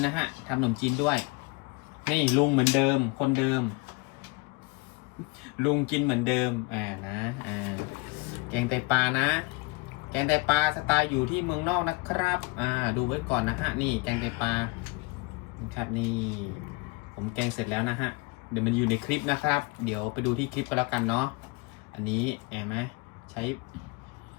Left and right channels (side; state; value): right; quieter; 26.9 dB